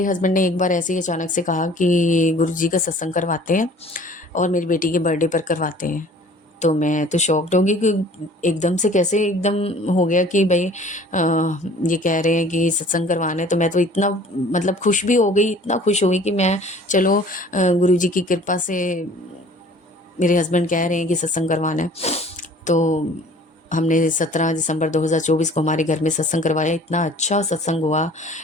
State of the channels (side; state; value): both; normal; correlation 0.50